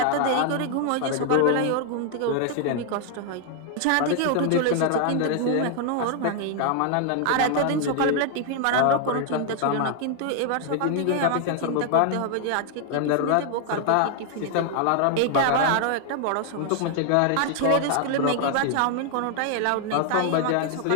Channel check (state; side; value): different; both; correlation 0.00